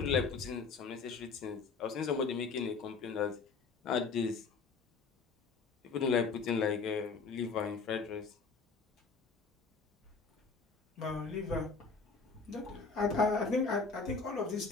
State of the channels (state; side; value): quieter; right; 4.7 dB